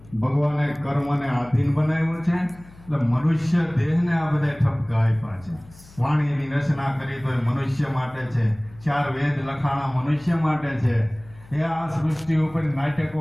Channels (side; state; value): left; noise; hum, 22 dB below the sound